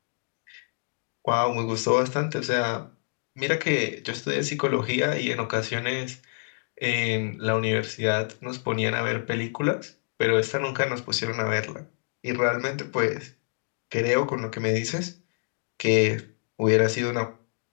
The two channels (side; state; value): right; silent; digital silence